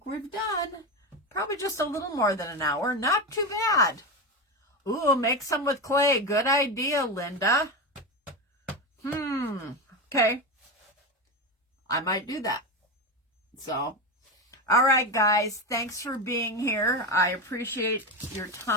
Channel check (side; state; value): both; normal; correlation 0.17